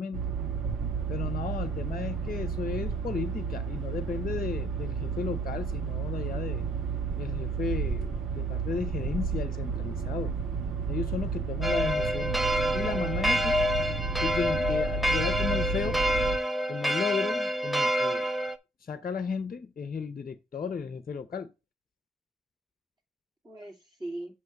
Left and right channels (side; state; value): both; normal; correlation 0.65